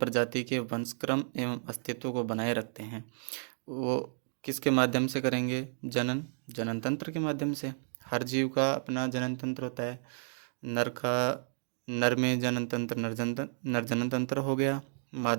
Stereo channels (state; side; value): silent; left; digital silence